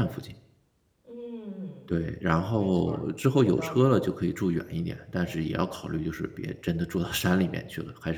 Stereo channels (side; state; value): both; identical; correlation 1.00